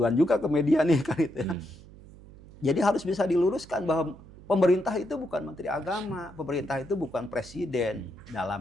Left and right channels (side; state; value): right; noise; hum, 20 dB below the sound